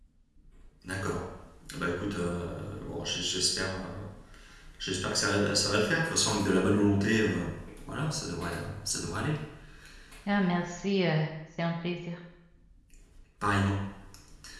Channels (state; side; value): identical; both; correlation 1.00